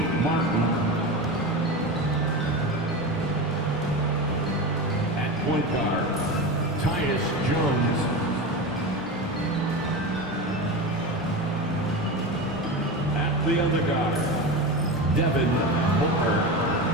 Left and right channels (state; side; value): normal; both; correlation 0.23